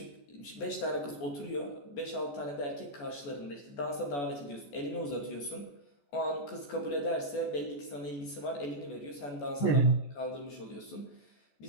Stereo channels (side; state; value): right; late; 14 ms